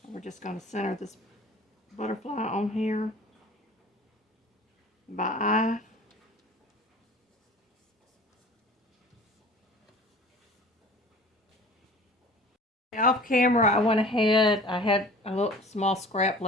We're just going to center this butterfly on here by eye. Off camera, I went ahead, I had a little small scrap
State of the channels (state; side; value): normal; both; correlation 0.44